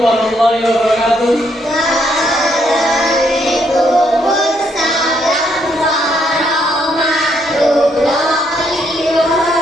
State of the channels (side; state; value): both; normal; correlation 0.73